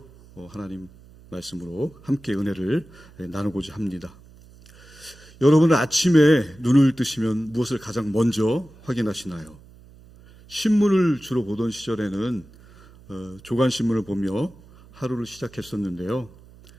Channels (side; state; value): right; noise; hum, 23 dB below the sound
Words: 하나님 말씀으로 함께 은혜를 나누고자 합니다. 여러분은 아침에 눈을 뜨시면 무엇을 가장 먼저 확인하시나요? 신문을 주로 보던 시절에는 조간신문을 보며 하루를 시작했었는데요.